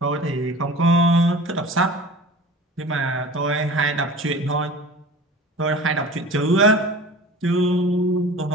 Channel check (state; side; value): normal; both; correlation 0.39